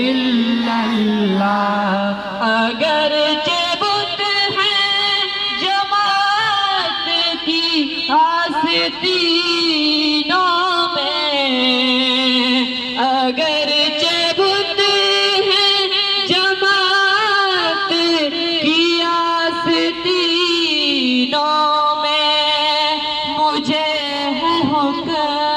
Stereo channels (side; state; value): both; identical; correlation 1.00